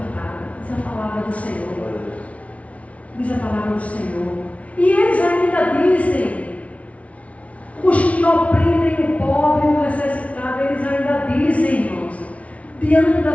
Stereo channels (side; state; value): right; late; 0.065 ms